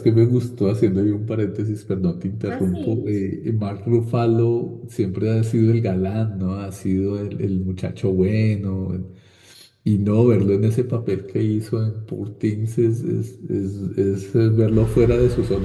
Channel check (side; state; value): both; identical; correlation 1.00